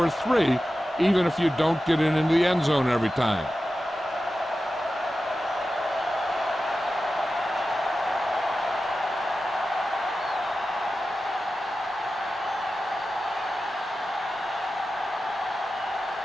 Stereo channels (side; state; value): both; normal; correlation 0.93